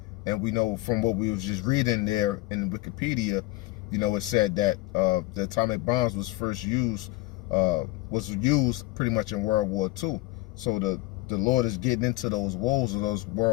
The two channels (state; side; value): quieter; right; 20.4 dB